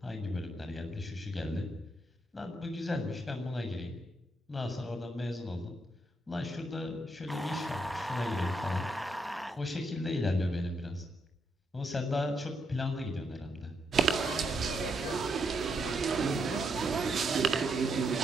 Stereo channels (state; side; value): normal; both; correlation 0.79